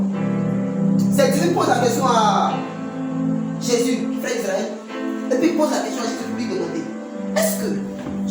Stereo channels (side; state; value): both; identical; correlation 1.00